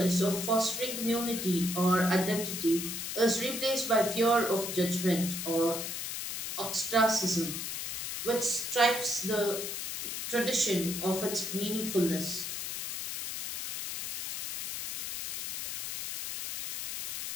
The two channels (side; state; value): left; noise; hiss, 5 dB below the sound